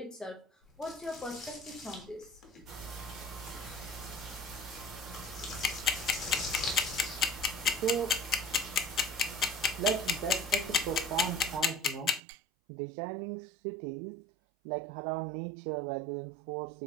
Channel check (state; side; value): drops out; left; at 12.2 s